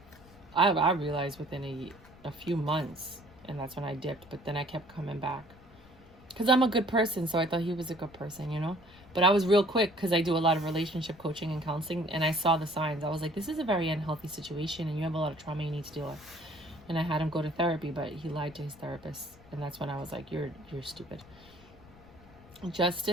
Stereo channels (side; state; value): left; noise; rumble, 23 dB below the sound